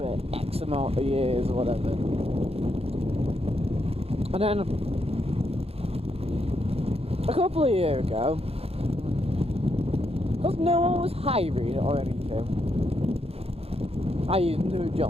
X amount of years or whatever. And then a couple of years ago, because no one was hiring or anything, i.e. no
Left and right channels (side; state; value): left; late; 0.29 ms